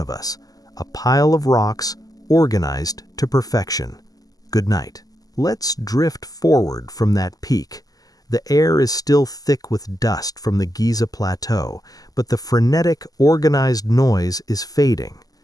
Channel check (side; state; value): right; late; 0.18 ms